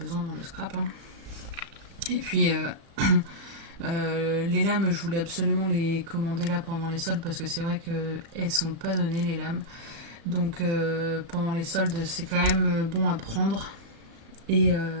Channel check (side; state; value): left; late; 35 ms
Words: dans le scrap. Hein. Et puis... les lames, je voulais absolument les commander là pendant les soldes parce que c'est vrai qu'elles sont pas données les lames. Donc pendant les soldes, c'est quand même bon à prendre. Et